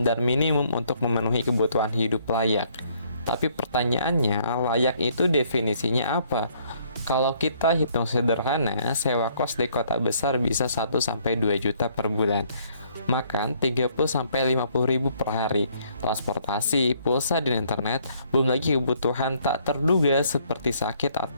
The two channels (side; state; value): both; inverted; correlation -0.65